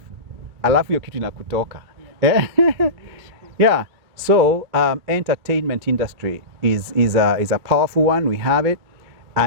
alafu hiyo kitu inakutoka. Yeah. So entertainment industry is a powerful one. We have it.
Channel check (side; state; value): left; late; 2.3 ms